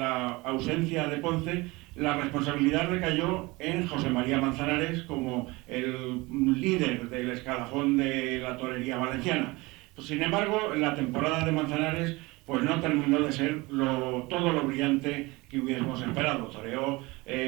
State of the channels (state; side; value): quieter; left; 23.1 dB